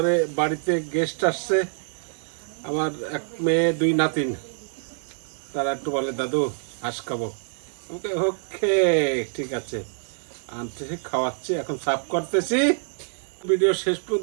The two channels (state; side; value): silent; left; digital silence